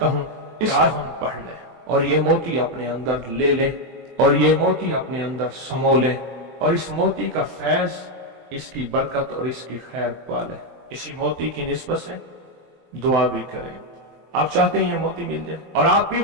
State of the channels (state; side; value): late; left; 24 ms